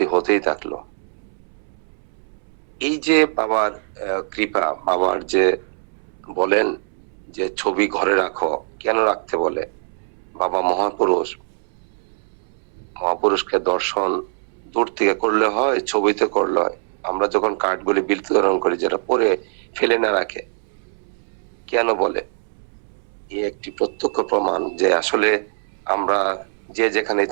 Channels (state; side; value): silent; left; 64 dB below the other